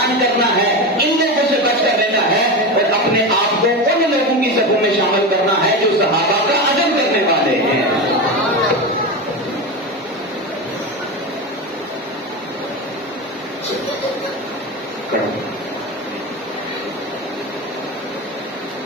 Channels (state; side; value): normal; both; correlation 0.20